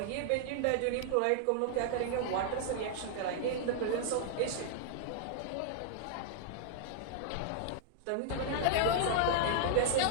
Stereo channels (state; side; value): different; both; correlation -0.01